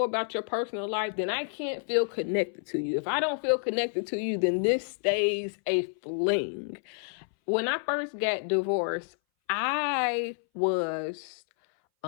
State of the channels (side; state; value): right; silent; 58 dB below the other